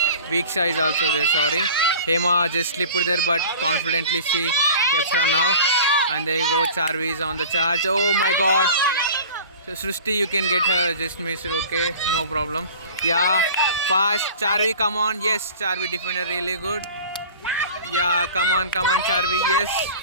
Viksha is also there, sorry. Hema just slipped there, but confidently she kept her now. And there you go, Charvi is on the charge. Oh my god. So Srushti, you can get her, just miss it, okay, no problem. Yeah, fast, Charvi, come on. Yes, Charvi defended really good. Yeah, come on, Charvi, yes.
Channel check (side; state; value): both; inverted; correlation -0.41